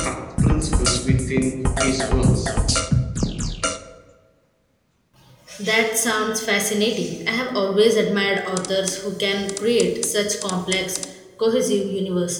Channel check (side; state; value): both; identical; correlation 1.00